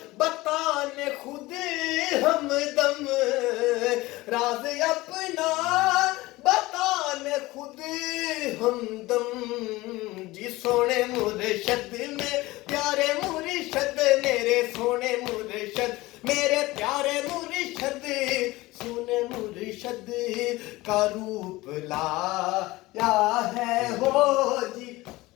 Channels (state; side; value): quieter; right; 19.7 dB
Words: بتانے خود ہمدم راز اپنا بتانے خود ہمدم جی سونے مرشد میں پیارے مرشد میرے سونے مرشد میرے پیارے مرشد سونے مرشد کا روپ لایا ہے ہو جی